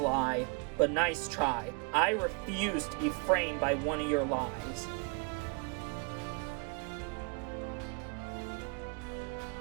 but nice try. I refuse to be framed by one of your lies.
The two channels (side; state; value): left; quieter; 33.6 dB